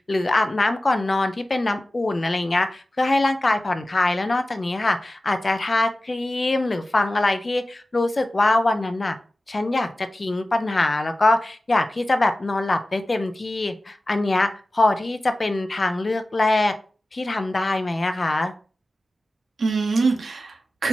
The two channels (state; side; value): normal; both; correlation 0.96